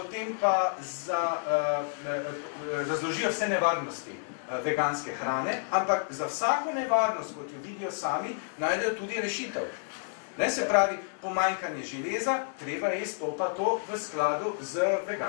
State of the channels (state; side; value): silent; right; digital silence